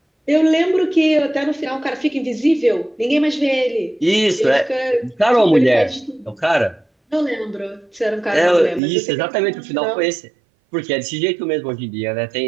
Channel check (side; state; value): left; drops out; at 8.8 s